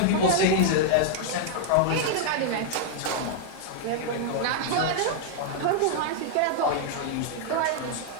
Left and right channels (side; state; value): both; different; correlation 0.00